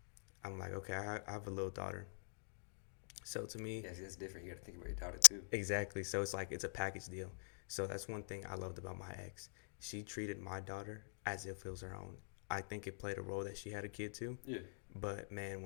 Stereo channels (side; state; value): right; silent; digital silence